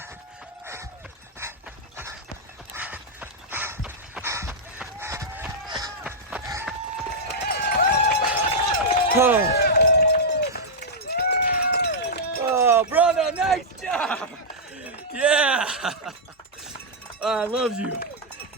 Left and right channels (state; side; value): normal; both; correlation -0.07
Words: Oh, brother, nice job. Yeah. I love you.